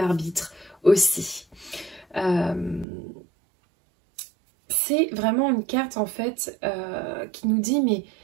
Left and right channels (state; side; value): drops out; left; at 2.9 s